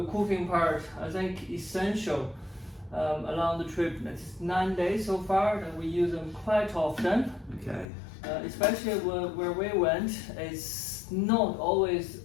cooking part, I think essential along the trip. It's 9 days so far, and we use them quite often. Okay. Especially where we went, it's not always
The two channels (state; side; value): drops out; right; at 7.9 s